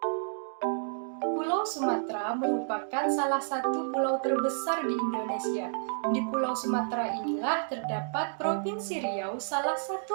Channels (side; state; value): left; silent; digital silence